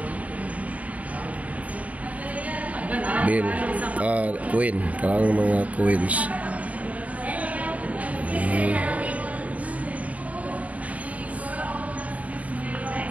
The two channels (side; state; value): left; late; 0.069 ms